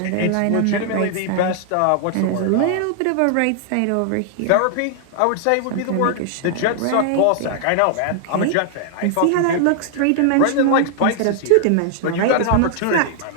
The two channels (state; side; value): different; both; correlation 0.00